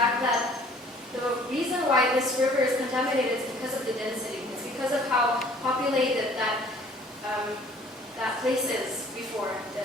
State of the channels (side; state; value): both; normal; correlation 0.54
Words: that the reason why this river is contaminated is because of the density. It's because of how populated that place is before.